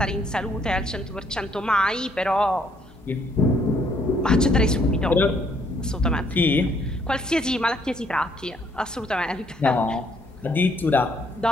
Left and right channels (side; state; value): both; normal; correlation 0.67